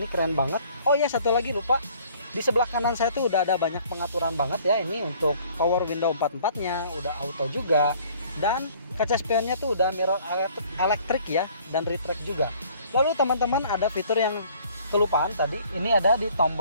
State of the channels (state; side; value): inverted; both; correlation -0.56